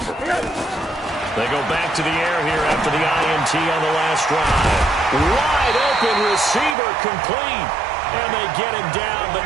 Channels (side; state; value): left; drops out; at 6.8 s